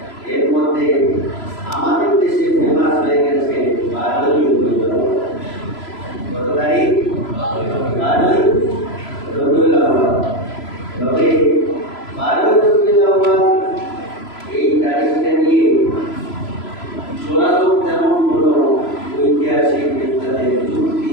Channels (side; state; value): right; late; 3.0 ms